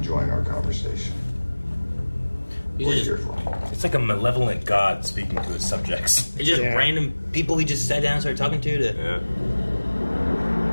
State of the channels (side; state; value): both; inverted; correlation -1.00